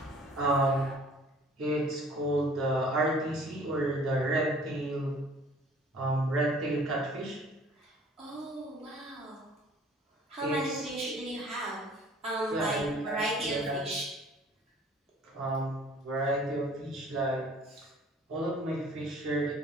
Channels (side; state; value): both; normal; correlation 0.52